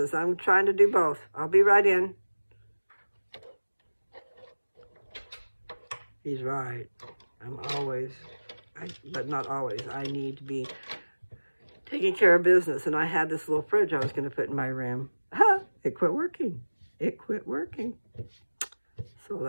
I'm trying to do both. I'll be right in. He's right. I'm always, but not always, I need to be taking care of business. And I had this little fridge I was going to put in my room. Ha! It quit working. It quit working. So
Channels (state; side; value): inverted; both; correlation -1.00